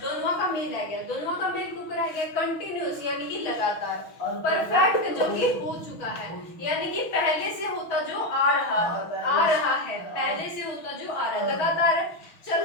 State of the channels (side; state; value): right; late; 6.2 ms